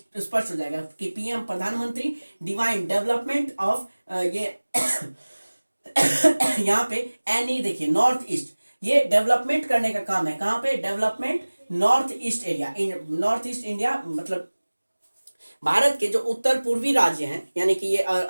हो जाएगा कि पीएम प्रधानमंत्री डिवाइन डेवलपमेंट ऑफ ये यहाँ पे एनी देखिए नॉर्थ ईस्ट, ये डेवलपमेंट करने का काम है। कहाँ पे, development north east area, north east India मतलब भारत के जो उत्तर पूर्वी राज्य हैं, यानी कि ये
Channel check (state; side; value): inverted; both; correlation -1.00